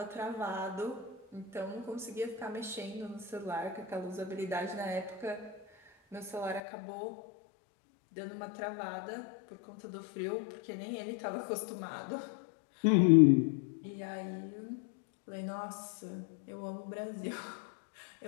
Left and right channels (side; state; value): right; drops out; at 6.6 s